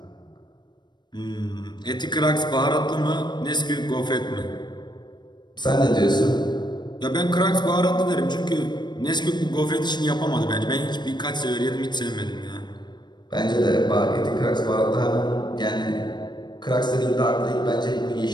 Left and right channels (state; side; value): late; right; 0.21 ms